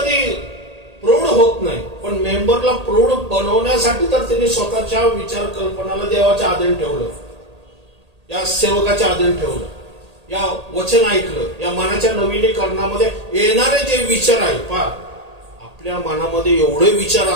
प्रौढ होत नाही, पण मेंबरला प्रौढ बनवण्यासाठी तर त्यांनी स्वतःच्या विचार कल्पनाला देवाच्या आधीन ठेवलं, या सेवकाच्या आधीन ठेवलं, या वचन ऐकलं, या मनाच्या नवीनीकरणामध्ये येणारे जे विचार आहे पहा, आपल्या मनामध्ये एवढे विचार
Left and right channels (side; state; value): left; late; 1.8 ms